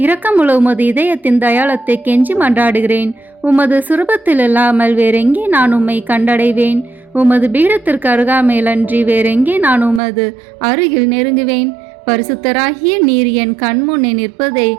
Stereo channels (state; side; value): drops out; left; at 10.0 s